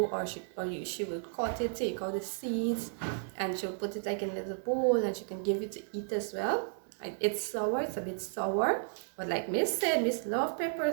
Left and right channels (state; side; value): silent; left; digital silence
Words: or she will cut it, take out the seeds, and she'll put it like in a little bowl, and she can give you to eat as well. It's sour, it's a bit sour, but like Miss said, Miss love